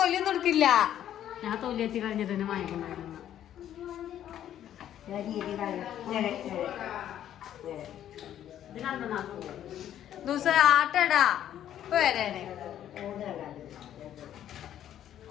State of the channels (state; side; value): quieter; right; 11.0 dB